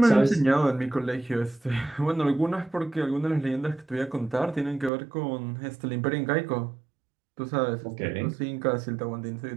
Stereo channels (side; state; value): left; drops out; at 4.9 s